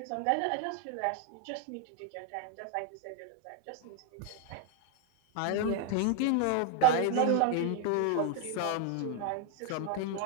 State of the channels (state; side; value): different; both; correlation 0.01